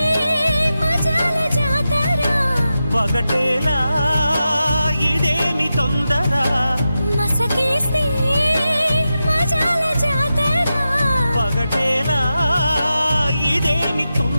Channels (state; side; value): inverted; both; correlation -0.91